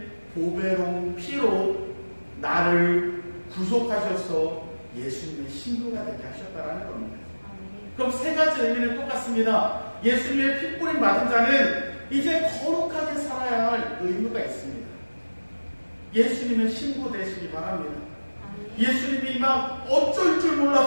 보배로운 피로 나를 구속하셔서 예수님의 신부가 되게 하셨다라는 겁니다. 그럼 세 가지 의미는 똑같습니다. 예수님의 핏부림 맞은 자는 이제 거룩하게 살아야 할 의무가 있습니다. 예수님의 신부 되시기 바랍니다. 예수님이 막 어쩔 줄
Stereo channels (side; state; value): both; inverted; correlation -1.00